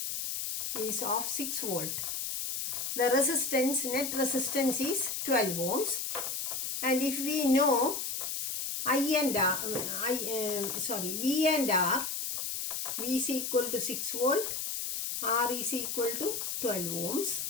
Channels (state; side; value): noise; left; hiss, 3 dB below the sound